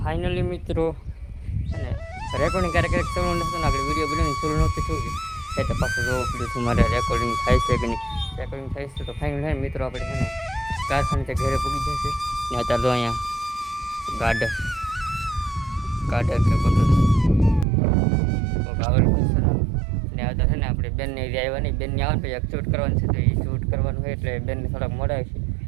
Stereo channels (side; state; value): left; drops out; at 17.7 s